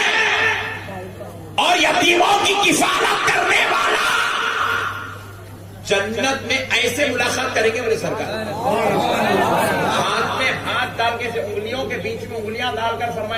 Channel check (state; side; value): identical; both; correlation 1.00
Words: اور یتیموں کی کفالت کرنے والا جنت میں ایسے ملاقات کریں گے میرے سرکار، ہاتھ میں ہاتھ ڈال کے انگلیوں کے بیچ میں انگلیاں ڈال کر